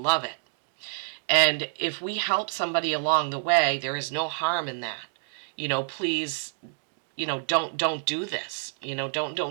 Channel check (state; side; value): silent; left; digital silence